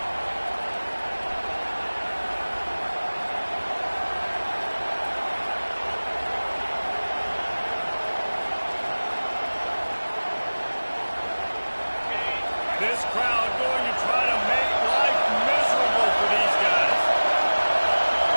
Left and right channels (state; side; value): inverted; both; correlation -1.00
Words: This crowd going to try to make life miserable for these guys.